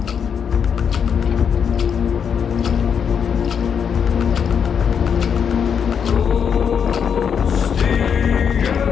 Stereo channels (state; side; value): quieter; right; 7.3 dB